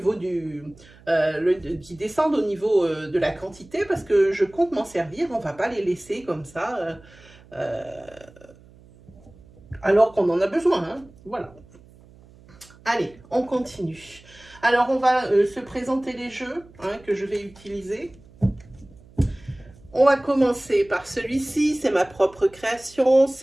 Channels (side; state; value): right; noise; hum, 25 dB below the sound